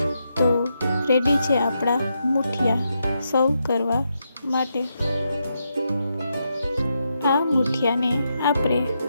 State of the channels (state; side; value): inverted; both; correlation -0.83